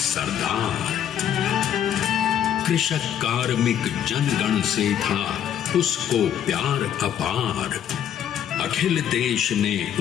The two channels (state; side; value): quieter; right; 9.8 dB